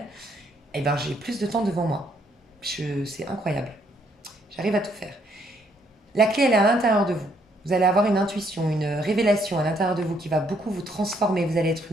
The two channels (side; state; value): both; normal; correlation 0.70